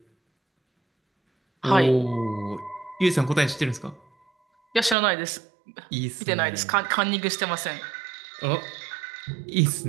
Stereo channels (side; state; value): left; drops out; at 5.0 s